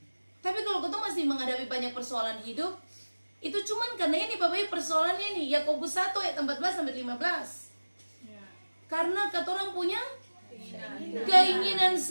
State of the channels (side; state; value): both; inverted; correlation -1.00